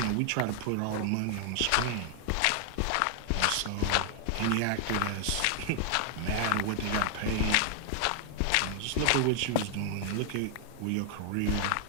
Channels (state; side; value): different; both; correlation 0.00